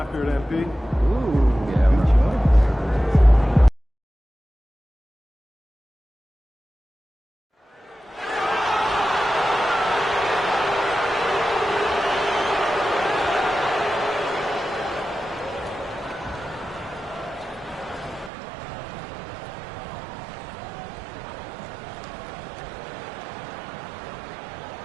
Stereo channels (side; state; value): left; drops out; at 18.3 s